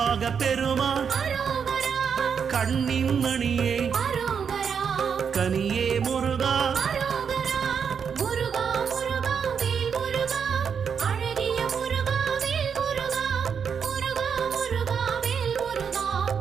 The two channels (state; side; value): quieter; left; 6.8 dB